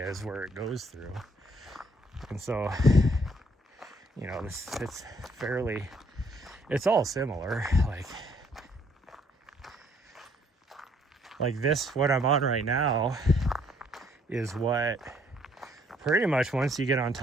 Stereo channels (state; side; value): normal; both; correlation 0.65